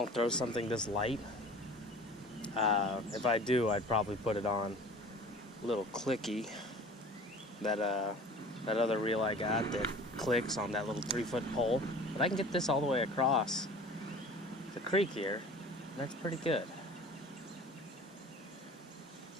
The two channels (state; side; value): normal; both; correlation 0.43